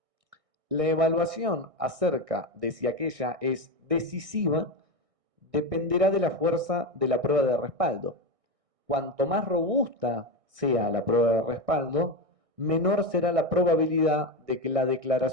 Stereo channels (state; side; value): late; left; 1.6 ms